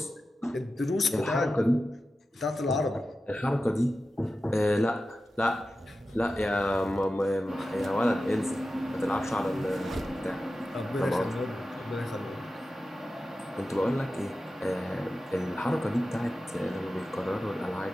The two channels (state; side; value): normal; both; correlation 0.93